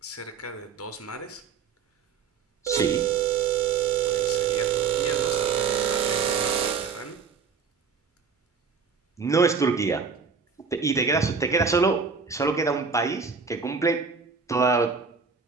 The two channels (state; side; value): quieter; left; 5.6 dB